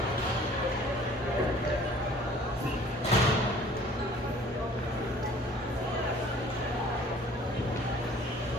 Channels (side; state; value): both; normal; correlation 0.52